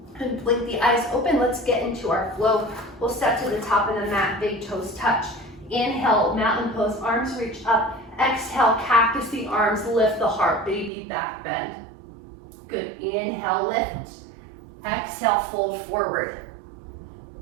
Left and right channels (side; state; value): left; drops out; at 10.9 s